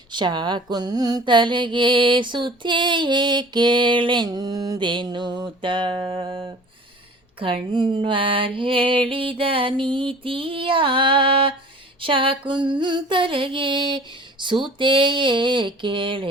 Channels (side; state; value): both; normal; correlation 0.45